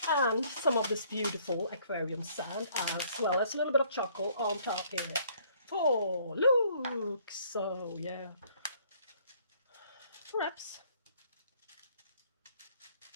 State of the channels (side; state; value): both; inverted; correlation -0.62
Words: And some of this beautiful aquarium sand, as well as a little bit of charcoal on top here. Oh, look! So, yeah. Perhaps.